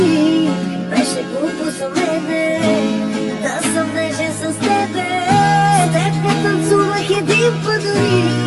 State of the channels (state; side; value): identical; both; correlation 1.00